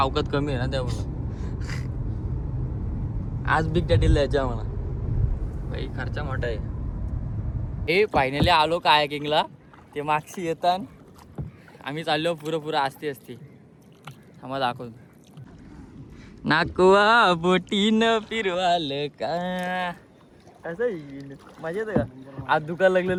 कमी आहे ना त्यामुळं. आज बिग डॅडीला जायचं म्हणा, भाई खर्चा मोठा आहे. हे फायनली आलो कायाकिंगला. ते मागशी येतात, आम्ही चाललो पुरं असते आम्हाला दाखवतो. नाकवा बोटीनं फिरवाल का असं येईल मजा येतं का. आज दुकान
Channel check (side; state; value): both; identical; correlation 1.00